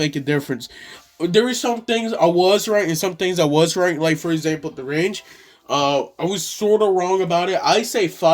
a difference. There are some things I was right and some things I was right. Like, for example, the range. I was sort of wrong about it. I say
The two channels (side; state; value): both; identical; correlation 1.00